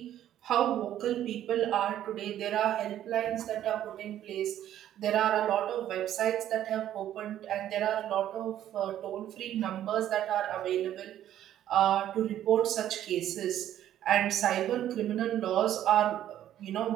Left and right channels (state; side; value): quieter; left; 11.7 dB